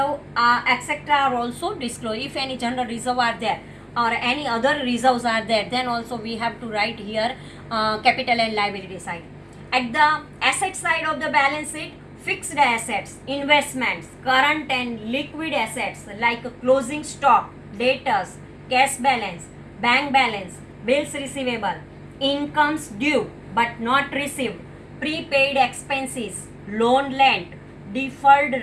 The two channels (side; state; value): both; identical; correlation 1.00